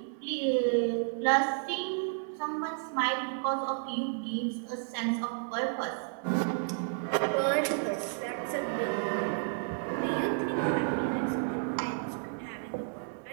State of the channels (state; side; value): silent; left; digital silence